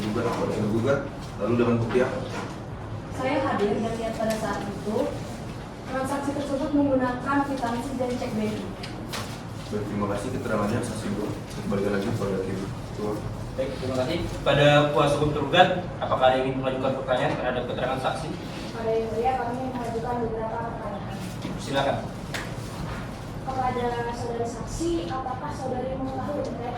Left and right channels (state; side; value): identical; both; correlation 1.00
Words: kepada tergugat? Lalu dengan bukti apa? Saya hadir dan lihat pada saat itu transaksi tersebut menggunakan kwitansi dan cek BNI. Baik, terima kasih keterangannya saksi 2. Kembali lagi kepada hakim. kepada kuasa hukum tergugat, apakah ada yang ingin mengajukan pertanyaan terhadap keterangan saksi? Pada yang mulia kami mengajukan beberapa pertanyaan. Silakan. Kepada saudari saksi, apakah saudari mengetahui terkait